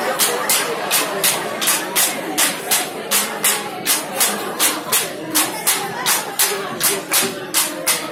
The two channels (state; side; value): identical; both; correlation 1.00